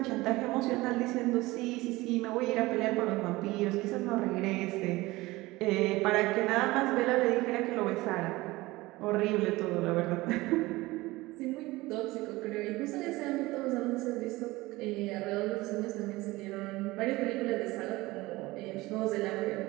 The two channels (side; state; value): left; quieter; 20.1 dB